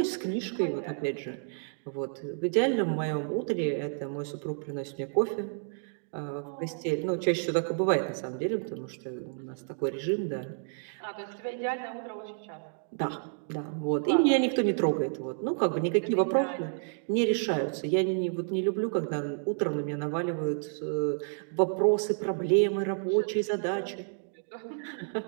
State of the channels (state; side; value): silent; left; digital silence